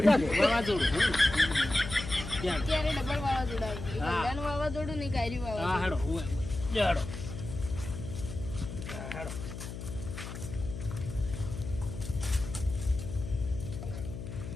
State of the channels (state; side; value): noise; left; hum, 8 dB below the sound